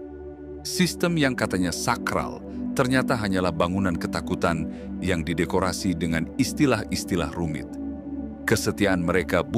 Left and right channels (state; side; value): identical; both; correlation 1.00